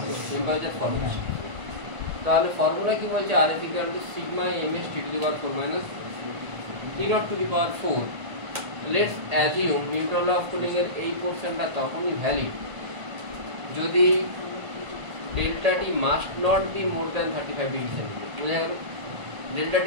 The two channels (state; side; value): late; left; 1.8 ms